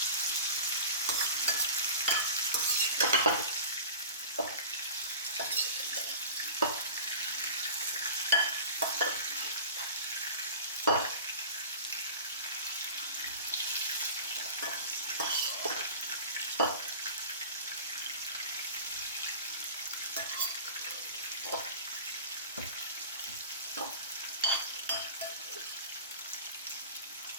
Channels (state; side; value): inverted; both; correlation -0.36